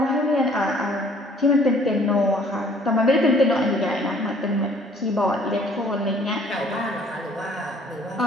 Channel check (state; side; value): normal; both; correlation 0.57